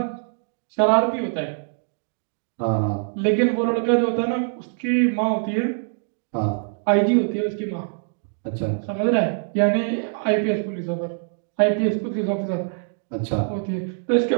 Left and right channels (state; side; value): silent; left; digital silence